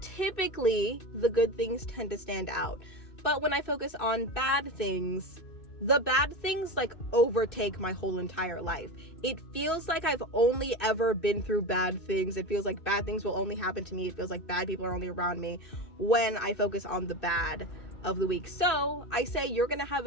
typically the good things tend to stand out. But when I focus on bad things, the bad things like overtake my whole entire life. It feels like I've only ever been through bad things. It feels like bad things will only happen to me. It feels like bad people are only around me when I focus on the bad of the week. So I say you're gonna have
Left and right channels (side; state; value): right; late; 2.6 ms